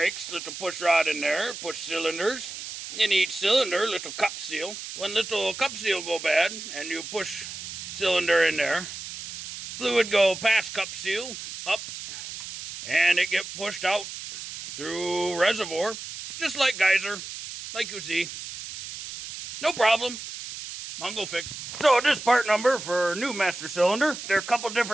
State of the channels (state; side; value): noise; right; hiss, 10 dB below the sound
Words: little push rod in there, push cylinders. In each cylinder, little cup seal. When little cup seal go bad, and you push cylinder in there, fluid go past cup seal, up, and it get pushed out through reservoir, just like geyser, like you see. No problem. Mongo Fix. So this part number for new master cylinder. There are a couple